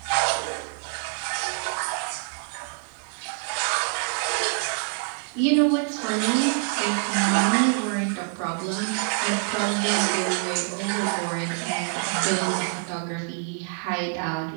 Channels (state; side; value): quieter; left; 40.0 dB